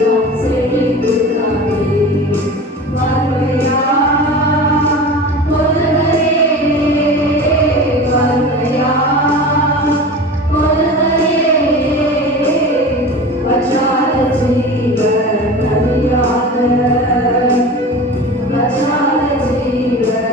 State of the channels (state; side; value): normal; both; correlation 0.33